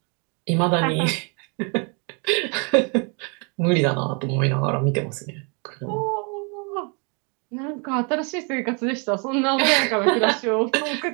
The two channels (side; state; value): left; quieter; 35.1 dB